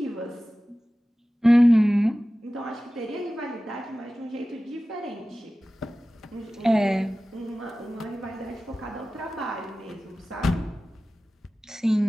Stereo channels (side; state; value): both; normal; correlation 0.96